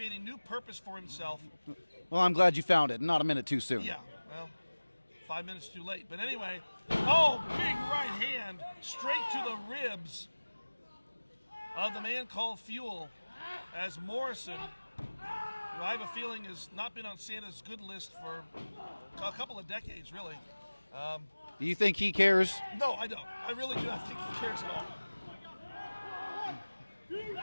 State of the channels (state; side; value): inverted; both; correlation -1.00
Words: a new purpose for himself. Well, I'm glad you found it. Not a minute too soon. Yeah, well, 5 minutes too late. But anyway, big right hand straight to the ribs of the man called Fuel, as Morrison, who I have a feeling has not been on Santa's good list for a couple of decades, really. Do you think he cares? No, I don't. I really do not think he cares at